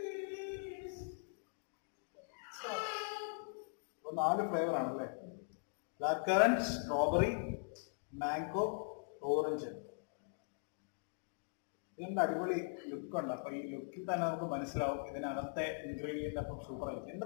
strawberry. 4 flavour ആണല്ലേ? Black currant, strawberry, mango, orange. ഇതിന്റെ അടിപൊളി ലുക്ക് ഉണ്ട്. അപ്പൊ ഈ ലുക്കിൽ തന്നെ നമുക്ക് മനസ്സിലാവും ഇതിനകത്തെ ഇൻഗ്രീഡിയന്റ് അപ്പം സൂപ്പർ ആയിരിക്കും.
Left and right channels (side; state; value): right; silent; digital silence